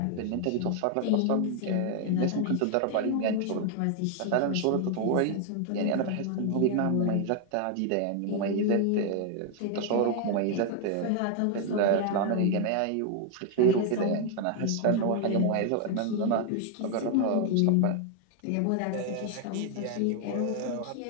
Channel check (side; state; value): both; different; correlation 0.00